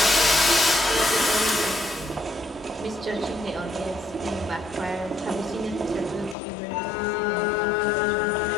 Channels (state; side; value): drops out; right; at 6.4 s